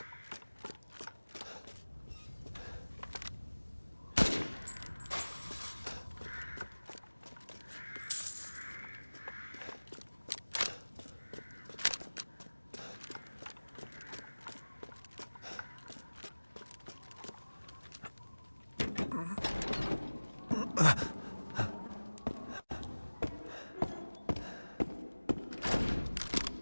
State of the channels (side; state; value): both; inverted; correlation -1.00